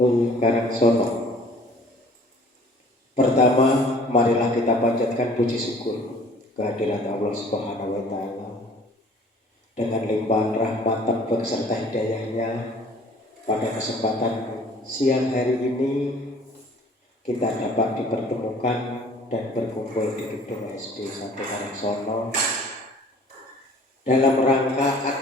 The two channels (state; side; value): normal; both; correlation 0.52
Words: Karangsono. Pertama, marilah kita panjatkan puji syukur kehadirat Allah Subhanahu wa Ta'ala dengan limpahan rahmat dan beserta hidayahnya. Pada kesempatan siang hari ini kita dapat dipertemukan dan berkumpul di gedung SD 1 Karangsono dalam rangka